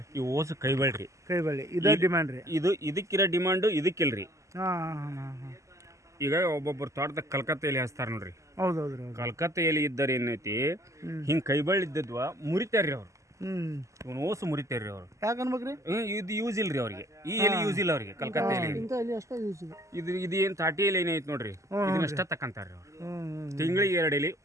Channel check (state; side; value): late; left; 0.15 ms